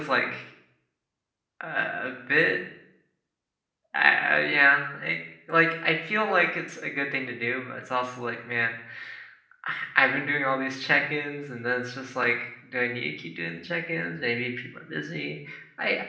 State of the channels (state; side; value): identical; both; correlation 1.00